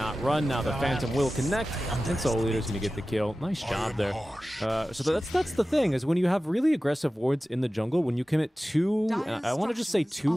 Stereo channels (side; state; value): both; normal; correlation 0.95